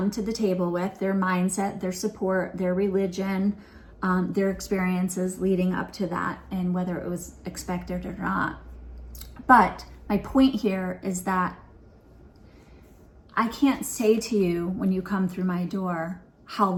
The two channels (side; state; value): both; identical; correlation 1.00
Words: to the table with, their mindset, their support, their religion, their experiences leading up to that, and whether it was expected or not. But my point here is that I can't say to you when you come through my door how